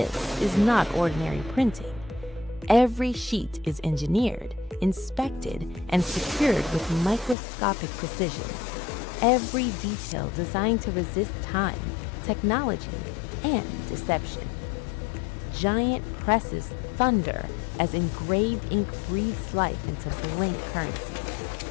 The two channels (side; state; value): right; drops out; at 7.4 s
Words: is not ordinary printing. Every sheet is engineered, inspected, and secured with microscopic precision. Every detail designed to resist time, technology, and deception. Giant presses thunder as engraved ink breathes life into blank